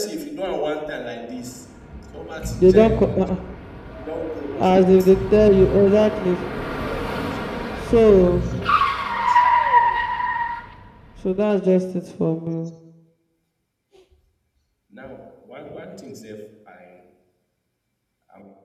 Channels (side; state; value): both; identical; correlation 1.00